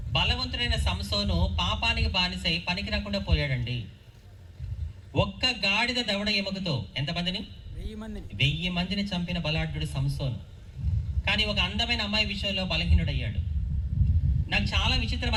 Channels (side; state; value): both; identical; correlation 1.00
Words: బలవంతుడైన సంసోను పాపానికి బానిసై పనికి రాకుండా పోయాడండి. ఒక్క గాడిద దవడ ఎముకతో ఎంతమందిని? 1000 మందిని చంపిన బలాఢ్యుడు సంసోను. కానీ ఒక అందమైన అమ్మాయి విషయంలో బలహీనుడయ్యాడు. నాకు చాలా విచిత్రం